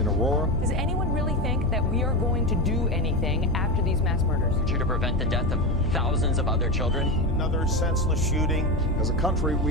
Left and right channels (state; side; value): normal; both; correlation 0.17